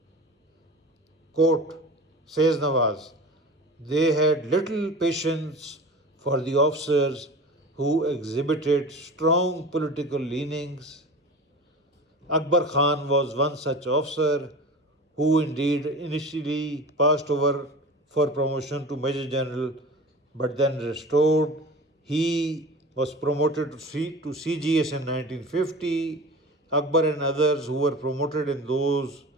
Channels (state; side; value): normal; both; correlation 0.35